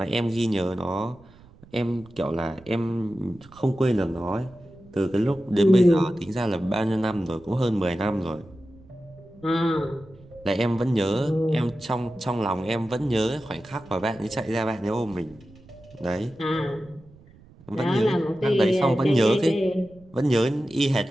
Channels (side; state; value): right; noise; rumble, 24 dB below the sound